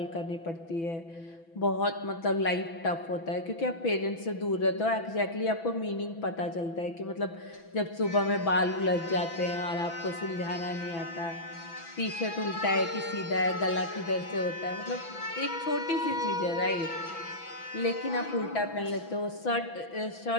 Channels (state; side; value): late; right; 6.0 ms